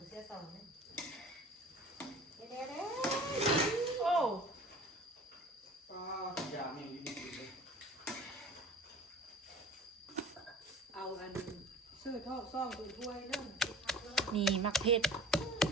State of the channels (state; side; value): normal; both; correlation 0.42